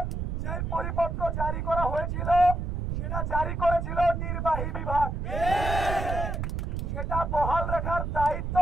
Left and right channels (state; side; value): noise; right; rumble, 2 dB below the sound